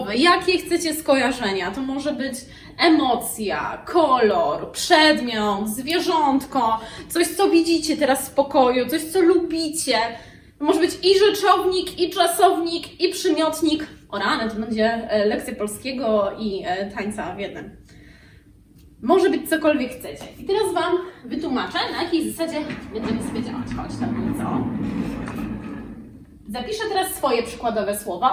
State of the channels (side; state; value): both; identical; correlation 1.00